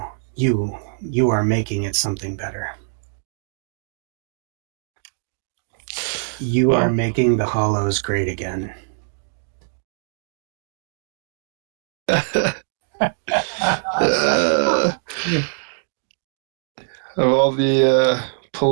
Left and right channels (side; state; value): left; silent; digital silence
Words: you you are making it something better. You are Well, making the Hollows great again. uh, of all the